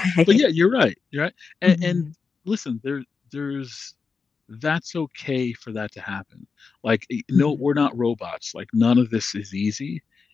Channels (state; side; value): quieter; right; 5.0 dB